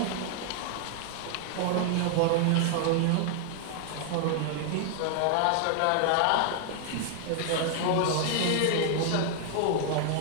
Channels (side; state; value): both; different; correlation 0.00